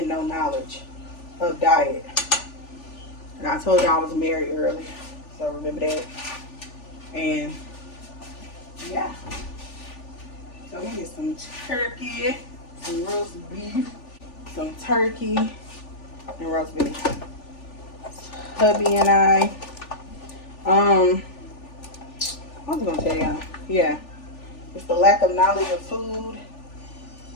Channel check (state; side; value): late; right; 3.4 ms